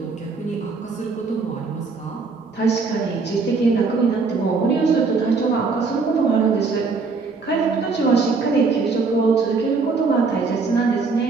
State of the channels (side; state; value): left; quieter; 4.4 dB